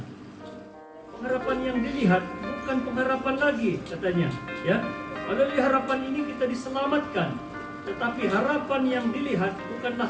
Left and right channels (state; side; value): identical; both; correlation 1.00